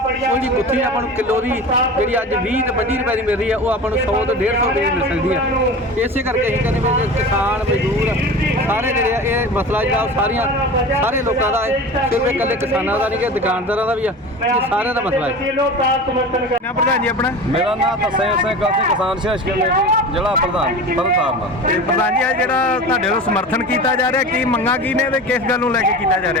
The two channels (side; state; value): both; normal; correlation 0.33